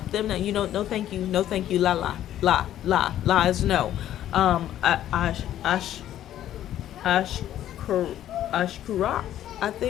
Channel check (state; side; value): quieter; right; 12.0 dB